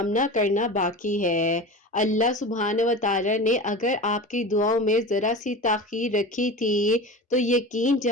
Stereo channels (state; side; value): normal; both; correlation 0.31